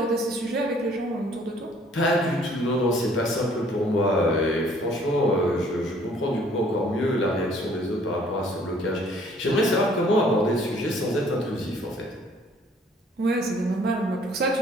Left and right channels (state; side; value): normal; both; correlation 0.59